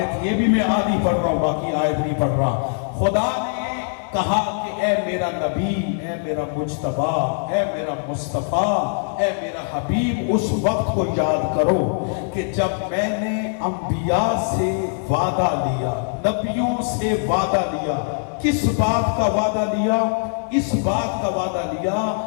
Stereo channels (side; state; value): right; silent; digital silence